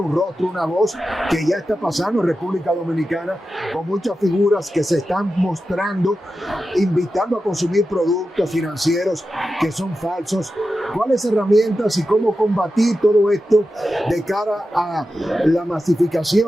rostro, una voz, que ya está pasando en República Dominicana, con muchas figuras que se están mostrando, invitando a consumir productos financieros que son falsos? ¿Cuáles herramientas y cómo combatir todo esto de cara a la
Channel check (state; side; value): normal; both; correlation 0.91